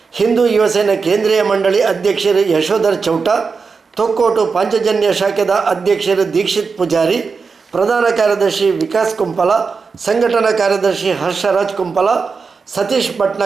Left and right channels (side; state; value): left; quieter; 5.0 dB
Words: ಹಿಂದೂ ಯುವಸೇನಾ ಕೇಂದ್ರೀಯ ಮಂಡಳಿ ಅಧ್ಯಕ್ಷರು ಯಶೋಧರ್ ಚೌಟ, ತೊಕ್ಕೋಟು ಪಾಂಚಜನ್ಯ ಶಾಖೆದ ಅಧ್ಯಕ್ಷರು ದೀಕ್ಷಿತ್ ಪೂಜಾರಿ, ಪ್ರಧಾನ ಕಾರ್ಯದರ್ಶಿ ವಿಕಾಸ್ ಕುಂಪಲ, ಸಂಘಟನಾ ಕಾರ್ಯದರ್ಶಿ ಹರ್ಷರಾಜ್ ಕುಂಪಲ, ಸತೀಶ್